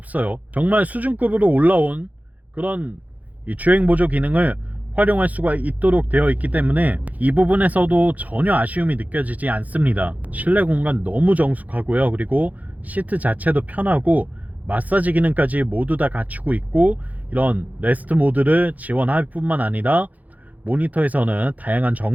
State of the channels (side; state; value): left; late; 0.078 ms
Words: 정말 수준급으로 올라온 그런 이 주행 보조 기능을 활용할 수가 있도록 되어 있기 때문에 이 부분에서도 전혀 아쉬움이 느껴지지 않습니다. 실내 공간 너무 정숙하고요. 그리고 시트 자체도 편하고 마사지 기능까지 모두 다 갖추고 있고, 이런 레스트 모드를 지원할 뿐만 아니라 모니터에서는 다양한